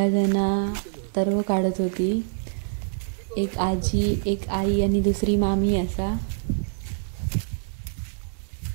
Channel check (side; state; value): left; silent; digital silence